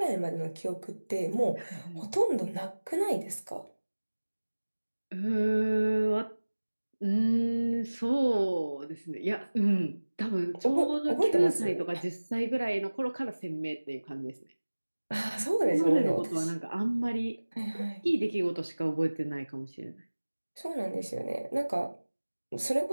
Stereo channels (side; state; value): both; inverted; correlation -1.00